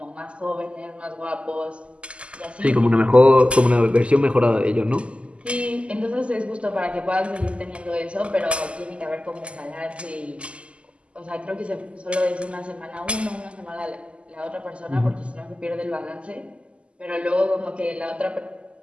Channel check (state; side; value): late; left; 0.055 ms